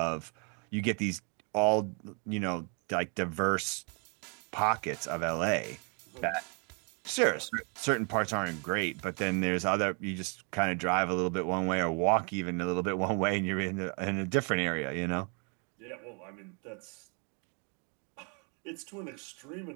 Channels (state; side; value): quieter; left; 36.8 dB